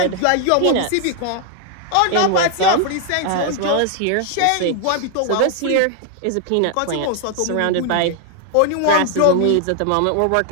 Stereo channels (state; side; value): different; both; correlation 0.00